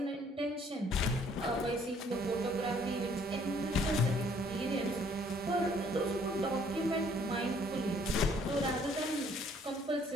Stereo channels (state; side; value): normal; both; correlation 0.62